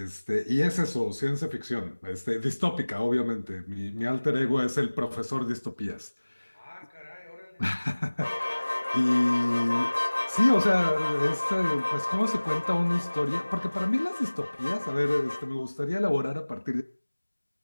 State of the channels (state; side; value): inverted; both; correlation -1.00